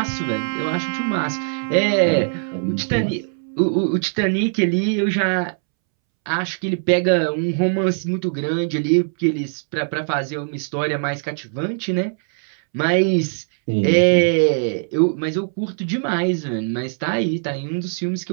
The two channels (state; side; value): silent; left; 65 dB below the other